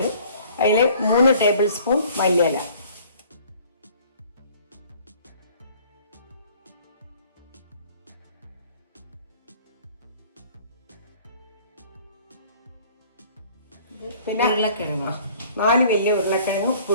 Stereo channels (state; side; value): inverted; both; correlation -0.53